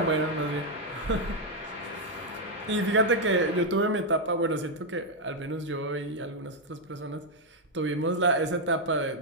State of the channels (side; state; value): both; normal; correlation 0.00